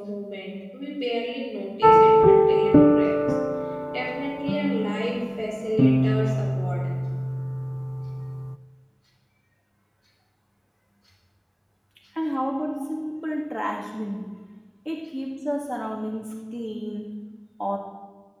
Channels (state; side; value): identical; both; correlation 1.00